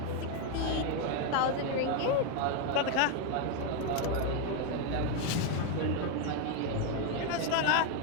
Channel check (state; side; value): different; both; correlation 0.01